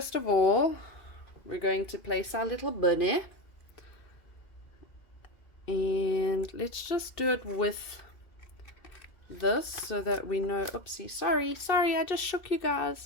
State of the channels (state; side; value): late; right; 2.7 ms